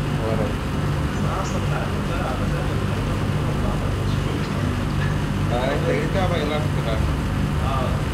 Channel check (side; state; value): both; identical; correlation 1.00